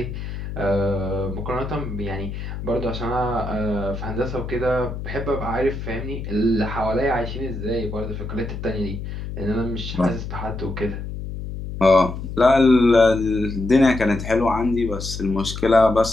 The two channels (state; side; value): noise; left; hum, 7 dB below the sound